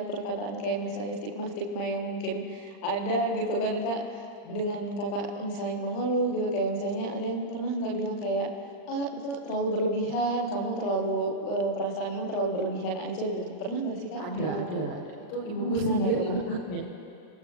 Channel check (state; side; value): late; right; 39 ms